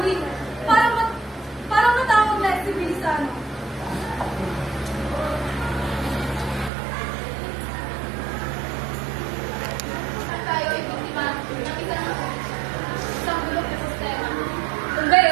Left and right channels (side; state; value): left; drops out; at 6.7 s